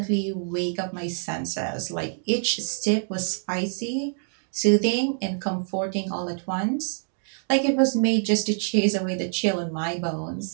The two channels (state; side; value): silent; left; 61 dB below the other